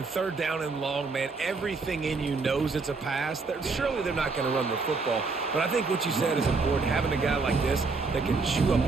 3rd down and long, man, everything in you knows it's a pass. Surely they're not going to run the football. But I think what you said is important, having a guy like this that can chew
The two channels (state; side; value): quieter; left; 4.2 dB